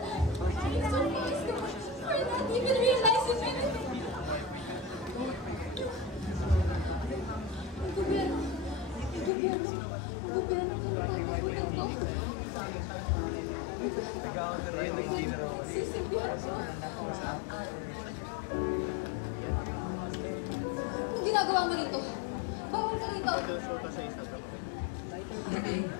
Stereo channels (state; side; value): drops out; right; at 9.3 s